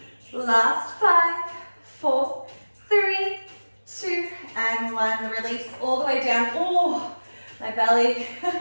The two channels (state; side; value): inverted; both; correlation -1.00